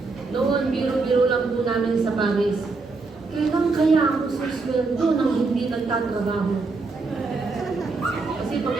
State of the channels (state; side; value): quieter; left; 3.9 dB